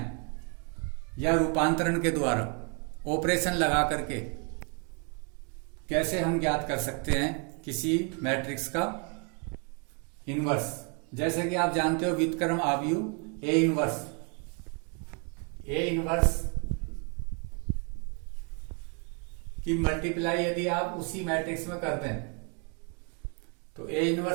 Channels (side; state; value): left; quieter; 37.8 dB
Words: या रूपांतरण के द्वारा ऑपरेशन लगा करके कैसे हम ज्ञात कर सकते हैं किसी मैट्रिक्स का इन्वर्स। जैसे कि आप जानते हो व्युत्क्रम आव्यूह ए इन्वर्स की मल्टीप्लाई यदि आप उसी मैट्रिक्स में करते हैं तो A